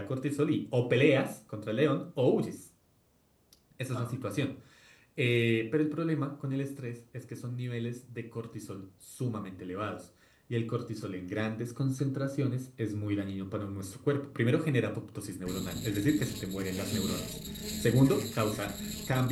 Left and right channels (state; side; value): identical; both; correlation 1.00